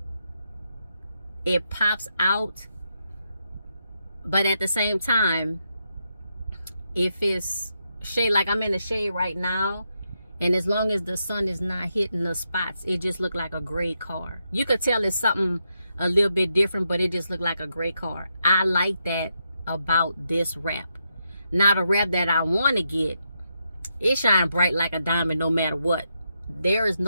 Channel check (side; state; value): both; inverted; correlation -0.82